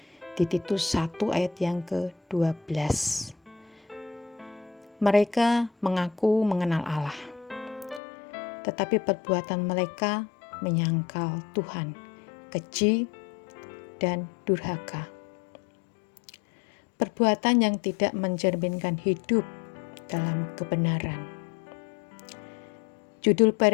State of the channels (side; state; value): right; drops out; at 8.0 s